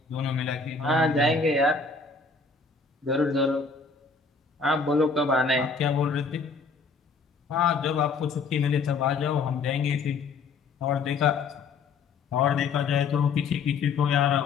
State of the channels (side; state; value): right; quieter; 4.6 dB